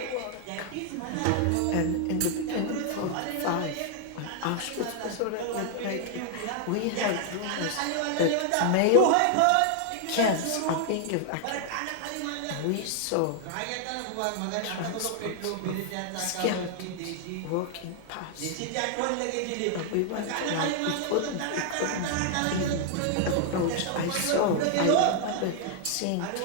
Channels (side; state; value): both; different; correlation 0.00